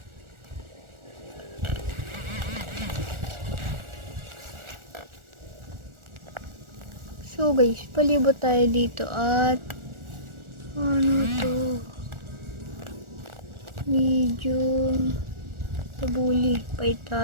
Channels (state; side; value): late; left; 1.4 ms